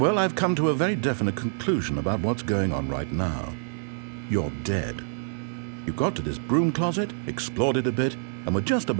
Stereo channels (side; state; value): left; silent; digital silence